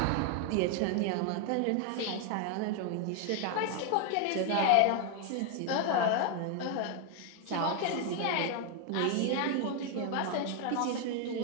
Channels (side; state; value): both; different; correlation 0.01